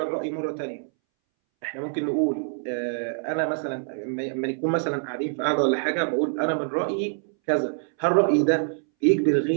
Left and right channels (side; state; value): left; silent; 61 dB below the other